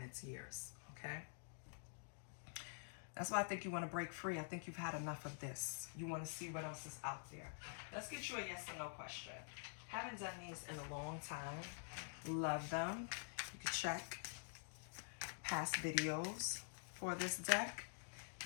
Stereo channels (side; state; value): right; silent; digital silence